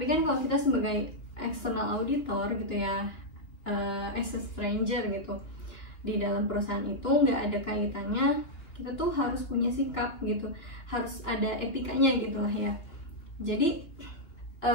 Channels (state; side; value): late; right; 2.7 ms